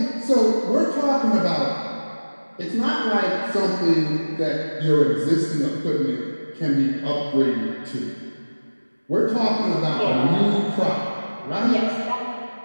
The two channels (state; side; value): inverted; both; correlation -1.00